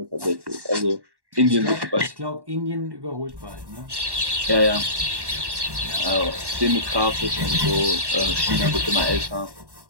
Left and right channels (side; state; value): left; late; 1.1 ms